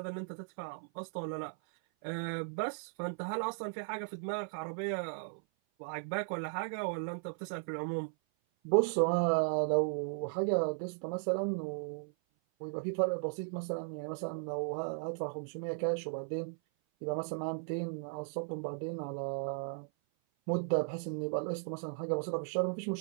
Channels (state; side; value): silent; left; 54 dB below the other